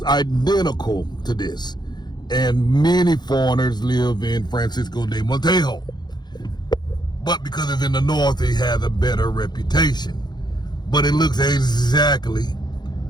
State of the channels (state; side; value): late; right; 0.21 ms